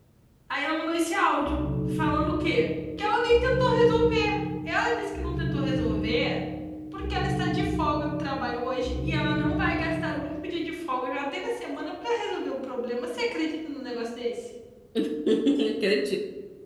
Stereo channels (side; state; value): both; identical; correlation 1.00